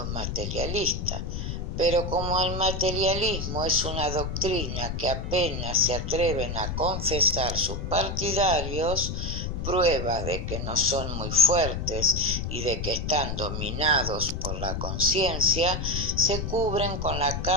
materialistas, pero como el materialismo es una doctrina que apenas se atreven a confesar sus partidarios, prueba de que no son muy fuertes y de que están dominados por la conciencia, se cubren con la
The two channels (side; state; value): left; noise; rumble, 4 dB below the sound